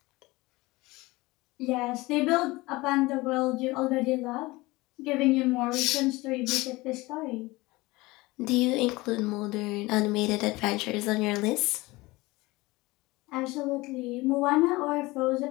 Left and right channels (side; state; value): right; quieter; 21.4 dB